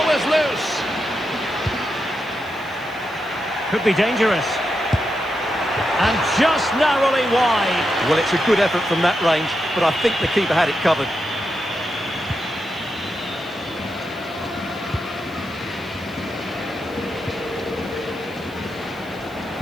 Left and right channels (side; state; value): left; noise; hiss, 26 dB below the sound